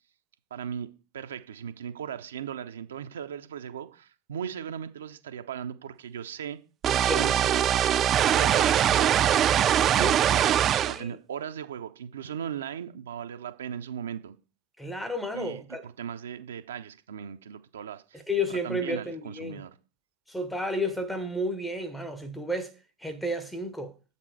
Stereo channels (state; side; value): quieter; left; 7.3 dB